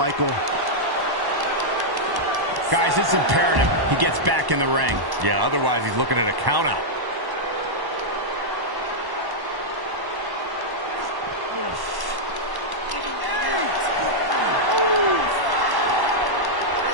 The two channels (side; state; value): left; late; 1.1 ms